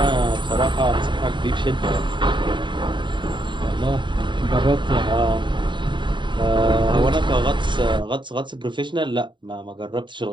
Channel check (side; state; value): left; late; 0.23 ms